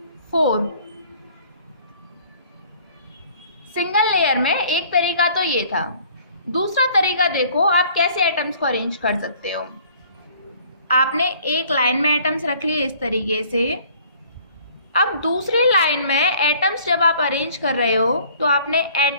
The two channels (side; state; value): both; inverted; correlation -0.55